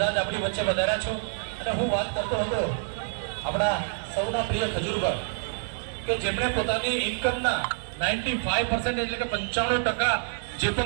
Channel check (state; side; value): silent; left; digital silence